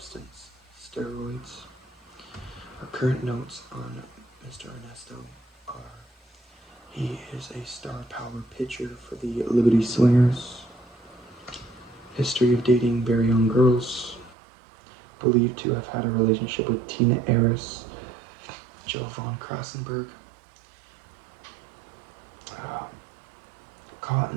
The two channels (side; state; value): left; drops out; at 14.4 s